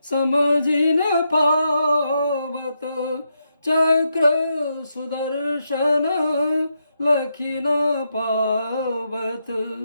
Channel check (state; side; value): inverted; both; correlation -0.83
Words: समझि न पावत चक्र सुदर्शन लखि न पावत